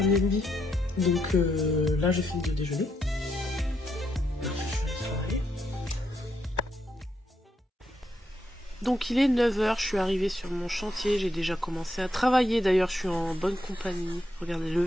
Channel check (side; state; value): both; normal; correlation 0.79